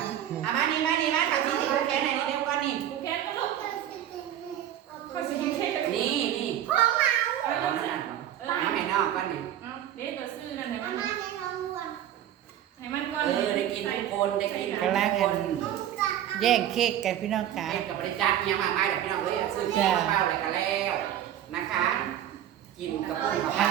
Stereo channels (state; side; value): quieter; left; 11.4 dB